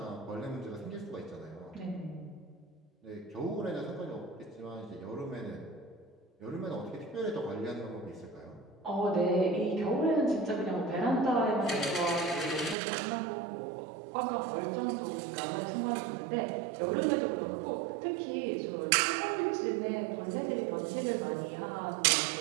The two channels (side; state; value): left; drops out; at 12.8 s